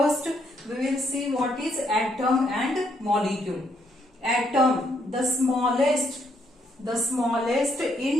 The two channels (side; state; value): both; normal; correlation 0.73